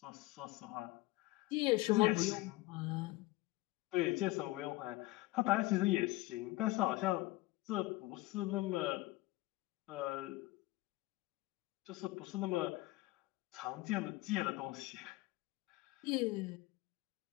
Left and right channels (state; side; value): quieter; right; 19.8 dB